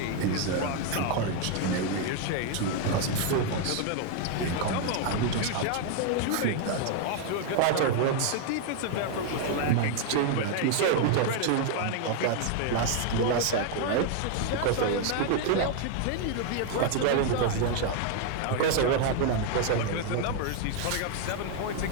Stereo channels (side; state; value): both; different; correlation 0.00